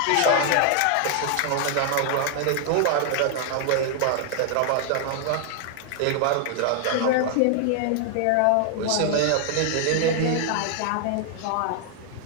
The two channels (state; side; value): different; both; correlation 0.00